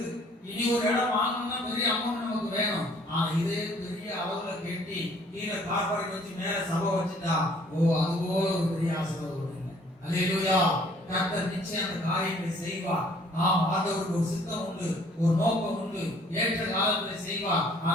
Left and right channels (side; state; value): both; normal; correlation 0.58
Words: இனி ஒரு இடம் வாங்கணும்னா பெரிய அமௌண்ட் நமக்கு வேணும். ஆனா இதே பெரிய அளவுல கட்டி கீழே கார் பார்க்கிங் வச்சு மேல சபை வச்சுட்டா அதுவோ ஒரு பெரிய ஆசீர்வாதம். அல்லேலூயா. கர்த்தர் நிச்சயம் அந்த காரியங்களை செய்வார். ஆண்டவருக்கு ஒரு சித்தம் உண்டு, ஒரு நோக்கம் உண்டு, ஏற்ற காலத்தில் செய்வார்.